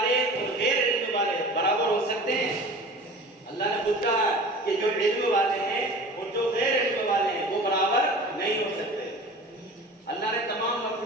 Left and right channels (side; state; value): both; normal; correlation 0.39